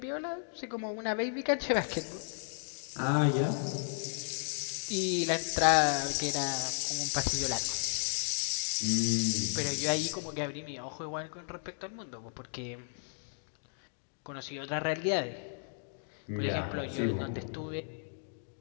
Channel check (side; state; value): right; silent; digital silence